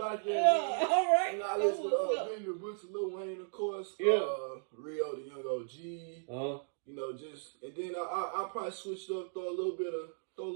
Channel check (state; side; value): silent; left; digital silence